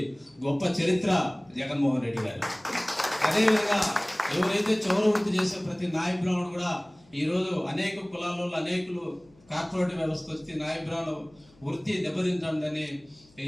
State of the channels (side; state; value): left; noise; hum, 29 dB below the sound